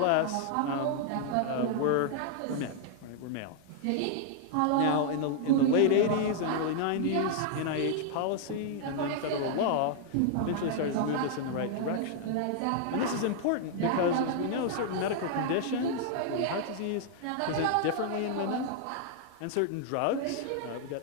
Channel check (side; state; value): both; different; correlation -0.01